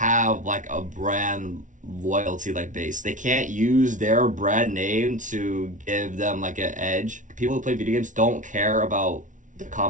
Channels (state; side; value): late; left; 0.37 ms